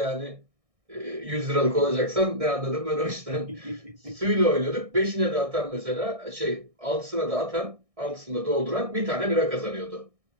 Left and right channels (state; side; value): late; left; 1.6 ms